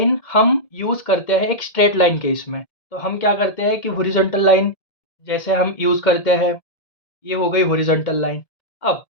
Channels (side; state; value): right; late; 1.8 ms